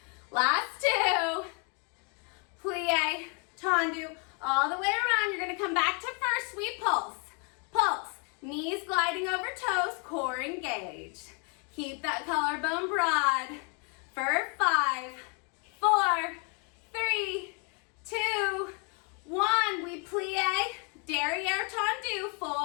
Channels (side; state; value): right; quieter; 36.5 dB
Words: Last 2. Plie, tendu, all the way around. You're going to come back to first. We pulse. Pulse. Knees gliding over toes. Core engaged. Keep that collarbone broad. For 5, 4, 3, 2, 1. We plie, derriere tendu,